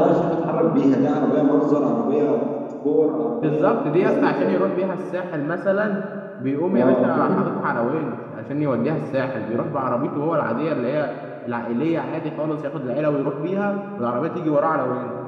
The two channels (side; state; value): both; identical; correlation 1.00